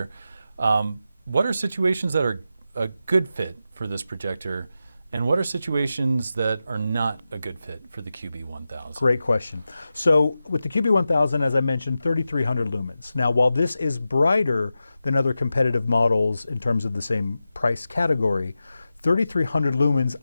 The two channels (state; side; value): inverted; both; correlation -0.92